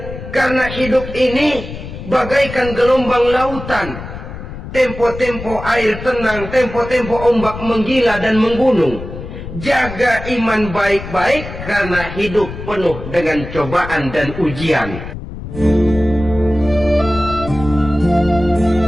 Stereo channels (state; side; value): noise; left; rumble, 11 dB below the sound